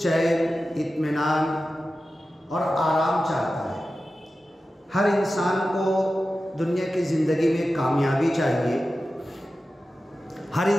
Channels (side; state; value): both; normal; correlation 0.93